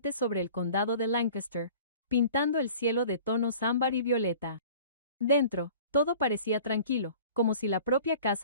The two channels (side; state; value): both; inverted; correlation -0.46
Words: sobre el condado de Lancaster, pintando el cielo de tonos ámbar y violeta. Dentro, todo parecía tranquilo, como si la propia